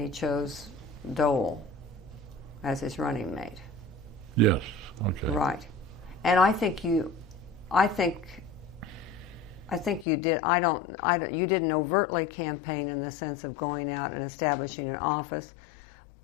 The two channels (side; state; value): right; drops out; at 10.1 s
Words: chose Dole as his running mate. Yes. Okay. Right. And I think you did. You didn't overtly campaign in the sense of going out and establishing an office,